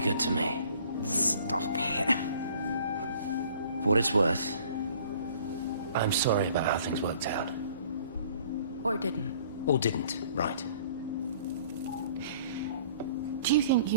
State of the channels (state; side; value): inverted; both; correlation -0.54